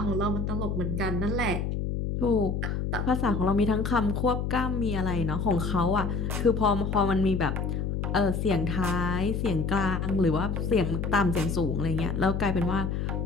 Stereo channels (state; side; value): noise; left; hum, 1 dB below the sound